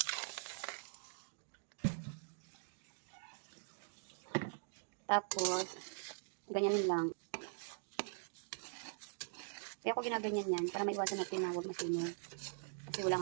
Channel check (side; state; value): left; silent; digital silence